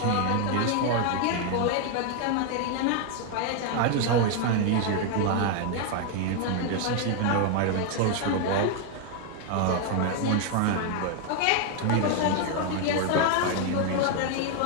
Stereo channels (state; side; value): different; both; correlation 0.01